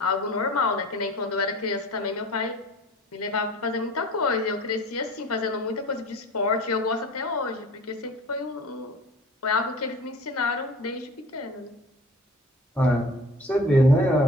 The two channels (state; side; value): normal; both; correlation 0.41